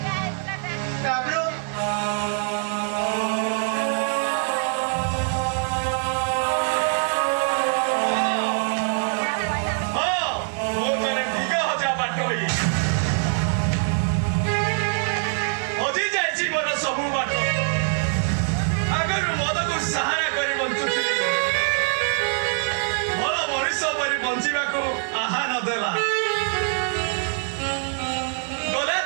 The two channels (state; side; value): silent; left; 63 dB below the other